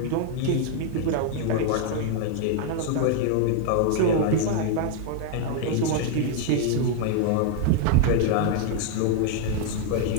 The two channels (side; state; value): both; different; correlation 0.00